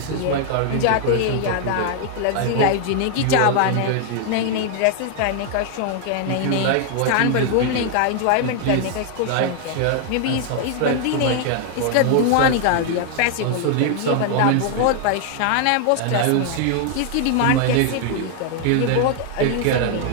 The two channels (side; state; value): both; different; correlation 0.00